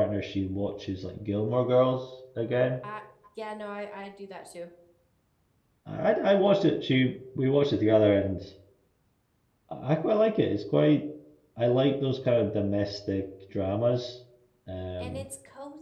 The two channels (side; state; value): both; identical; correlation 1.00